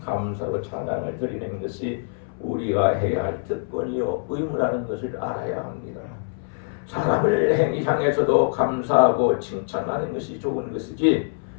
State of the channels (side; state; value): right; silent; 60 dB below the other